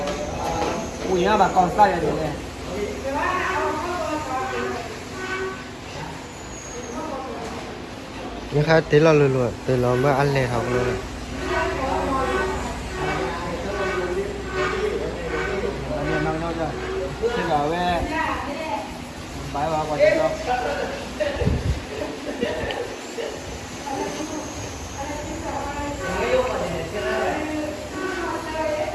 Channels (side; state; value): both; identical; correlation 1.00